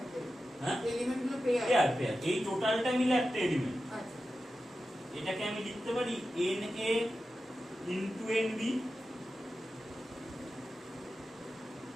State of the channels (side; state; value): both; normal; correlation 0.92